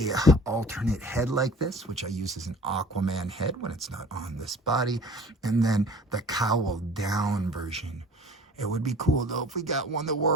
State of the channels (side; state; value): both; normal; correlation 0.46